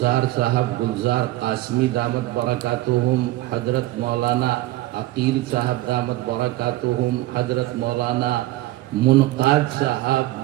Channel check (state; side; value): quieter; left; 16.8 dB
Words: صاحب، گلزار قاسمی دامت برکاتہم، حضرت مولانا عقیل صاحب دامت برکاتہم، حضرت مولانا منقاد